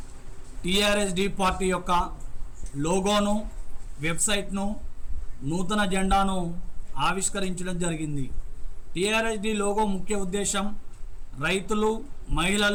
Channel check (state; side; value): identical; both; correlation 1.00